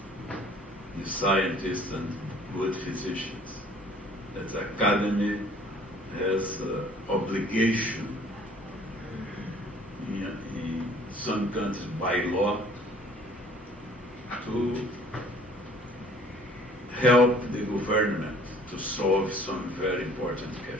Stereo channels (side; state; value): both; normal; correlation 0.54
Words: The scientists and good physicians. That academy has obligation in some countries by law to help the government to solve some very important